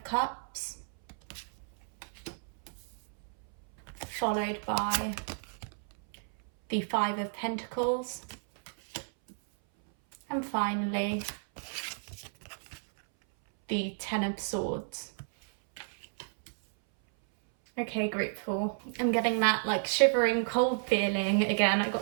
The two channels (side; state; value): left; silent; 57 dB below the other